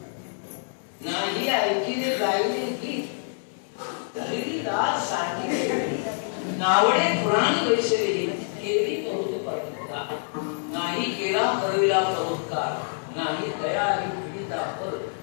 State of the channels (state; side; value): silent; right; 59 dB below the other